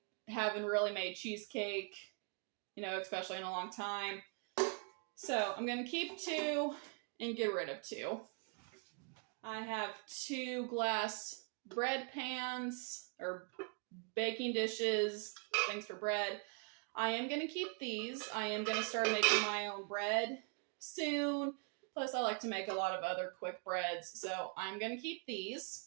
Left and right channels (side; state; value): left; quieter; 37.6 dB